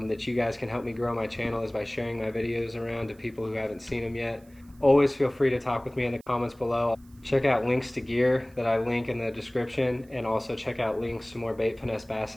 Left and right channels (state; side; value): noise; right; hiss, 30 dB below the sound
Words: you guys can help me grow my channel, is by sharing my videos around to people who haven't seen them yet. Always feel free to talk with me in the comments below. Check out links to gear that I link in the description, and also check out links to more bait finesse bass